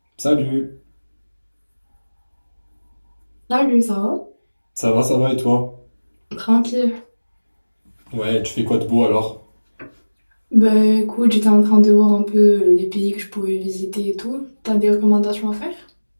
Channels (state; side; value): inverted; both; correlation -1.00